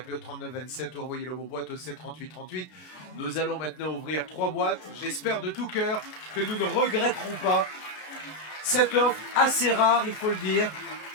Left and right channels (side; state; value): right; late; 32 ms